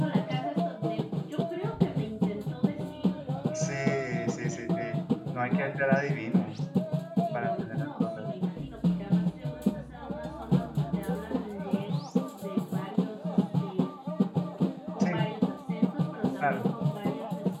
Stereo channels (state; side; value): identical; both; correlation 1.00